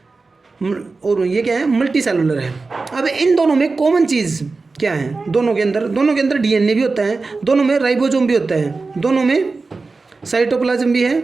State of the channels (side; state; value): left; quieter; 3.9 dB